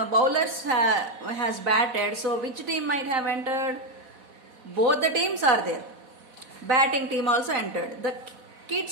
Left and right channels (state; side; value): late; left; 4.1 ms